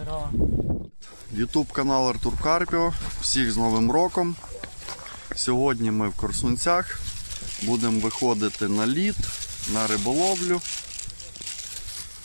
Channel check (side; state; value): both; inverted; correlation -1.00